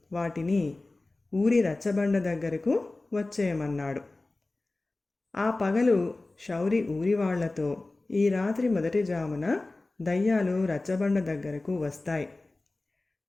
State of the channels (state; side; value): quieter; right; 3.1 dB